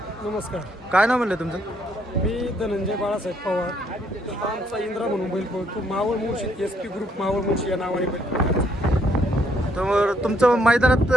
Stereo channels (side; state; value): both; normal; correlation 0.70